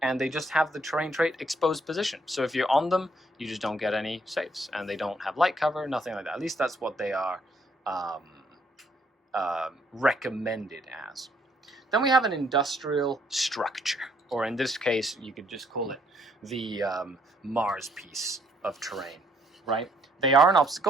and they just have the terrain trait exposed position. So if you're on them, you just don't get any saves, and they don't have light cover, nothing like that. At least that's what they are recommended as. Then we have an industrial structure, or in this case, you could just call it the Mars piece of terrain, right? They are an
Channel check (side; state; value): both; normal; correlation 0.68